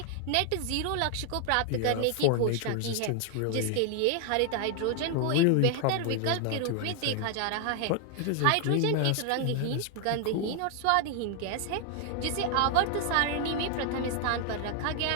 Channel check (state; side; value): different; both; correlation 0.00